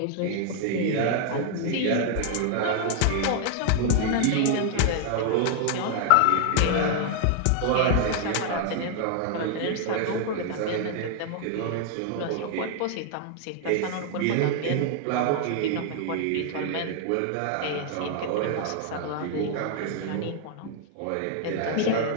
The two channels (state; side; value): different; both; correlation 0.00